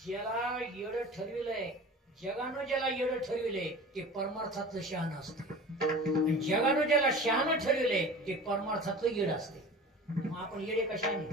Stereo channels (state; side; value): normal; both; correlation 0.38